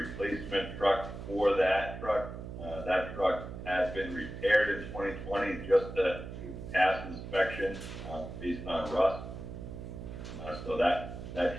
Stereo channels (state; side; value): noise; right; hum, 9 dB below the sound